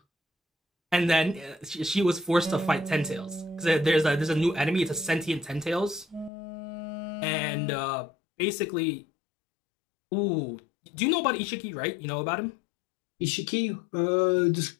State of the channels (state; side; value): drops out; right; at 6.3 s